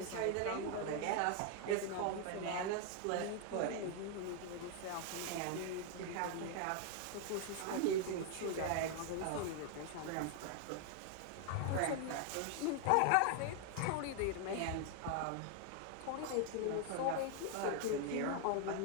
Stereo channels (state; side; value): different; both; correlation 0.00